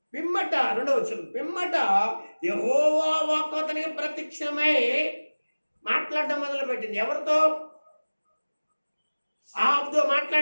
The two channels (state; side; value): inverted; both; correlation -1.00